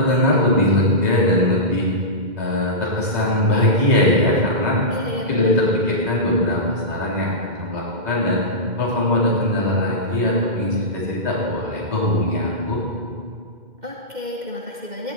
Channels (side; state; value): left; late; 2.0 ms